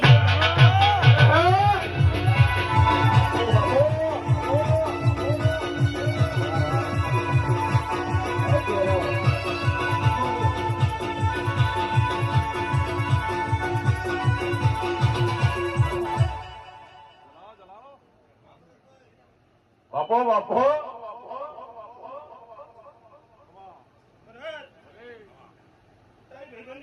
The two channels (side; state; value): both; identical; correlation 1.00